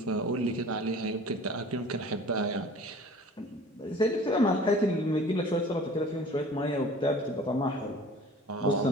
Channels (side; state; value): both; normal; correlation 0.45